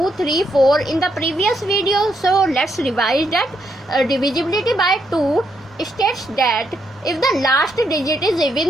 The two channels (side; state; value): both; normal; correlation 0.77